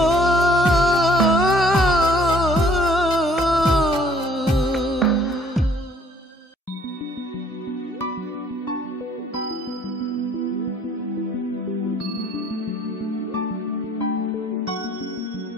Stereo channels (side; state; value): both; normal; correlation 0.58